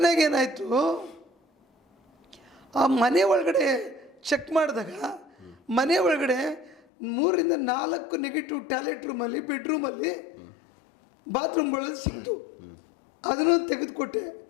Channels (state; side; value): drops out; right; at 6.8 s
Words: ಆ ಮನೆ ಒಳಗಡೆ ಚೆಕ್ ಮಾಡಿದಾಗ ಮನೆ ಒಳಗಡೆ 3 ರಿಂದ 4 ನೆಗೆಟಿವ್ ಟಾಯ್ಲೆಟ್ ರೂಮಲ್ಲಿ, ಬೆಡ್ರೂಮಲ್ಲಿ, ಬಾತ್ರೂಮ್ಗಳಲ್ಲಿ ಸಿಕ್ತು. ಅದನ್ನು ತೆಗೆದುಕೊಟ್ಟೆ,